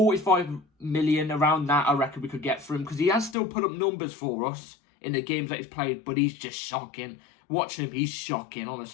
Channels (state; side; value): drops out; right; at 3.4 s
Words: million, around that, I reckon we could get for him because he has still put up numbers for us in the games that he's played, but he's just shocking. Watch him, he's shocking,